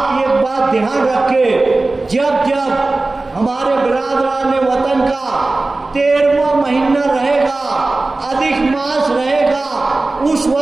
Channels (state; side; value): quieter; left; 3.2 dB